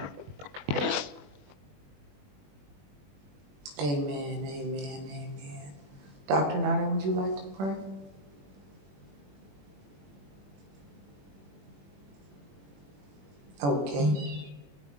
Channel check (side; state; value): left; late; 21 ms